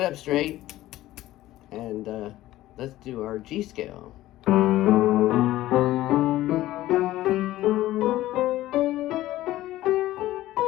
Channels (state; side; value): quieter; right; 15.4 dB